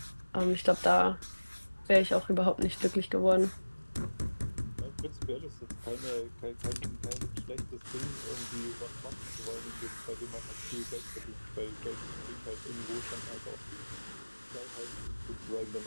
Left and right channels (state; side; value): inverted; both; correlation -1.00